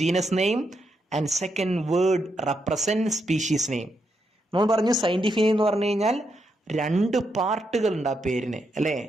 genus name and second word represent species name. നമ്മൾ പറഞ്ഞു സയന്റിഫിക് നെയിം എന്ന് പറഞ്ഞു കഴിഞ്ഞാൽ 2 പാർട്ടുകൾ ഉണ്ട് ആ പേരിന്, അല്ലേ?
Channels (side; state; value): both; normal; correlation 0.81